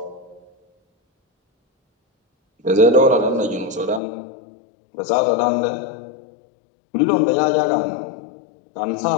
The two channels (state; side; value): drops out; right; at 4.0 s